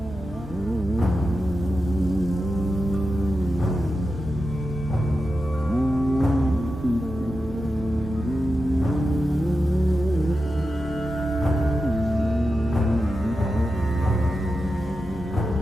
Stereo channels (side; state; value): both; normal; correlation 0.90